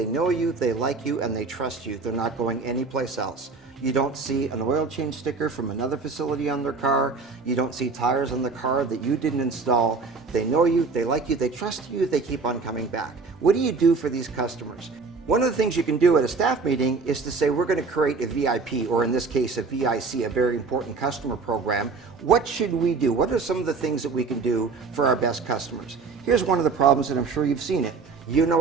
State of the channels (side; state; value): left; quieter; 4.5 dB